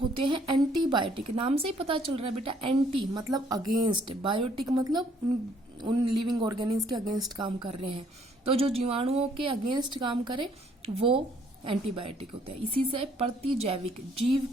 होते हैं एंटीबायोटिक। नाम से ही पता चल रहा है बेटा, एंटी मतलब अगेंस्ट, बायोटिक मतलब उन लिविंग ऑर्गेनिज्म के अगेंस्ट काम कर रहे हैं। तो जो जीवाणुओं के अगेंस्ट काम करे वो एंटीबायोटिक होते हैं। इसी से प्रतिजैविक, जीव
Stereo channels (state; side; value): normal; both; correlation 0.64